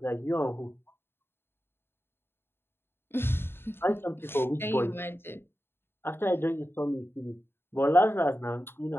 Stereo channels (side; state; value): right; late; 0.11 ms